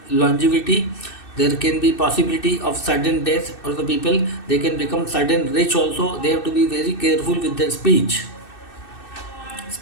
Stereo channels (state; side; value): late; right; 2.6 ms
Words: longevity. There can be possibility of sudden death for the people. They can become sudden rich also. They have to be very careful with their speech.